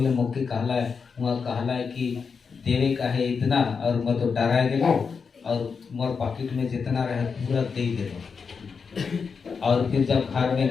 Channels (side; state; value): right; quieter; 5.6 dB